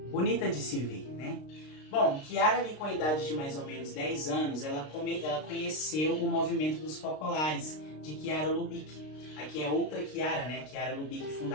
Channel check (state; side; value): late; right; 32 ms